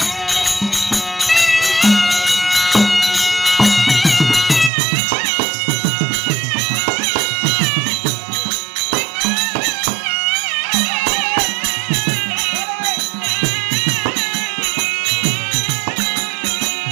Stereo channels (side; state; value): left; drops out; at 4.7 s